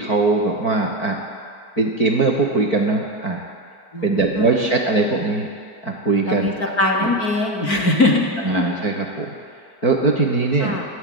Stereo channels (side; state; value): right; late; 4.5 ms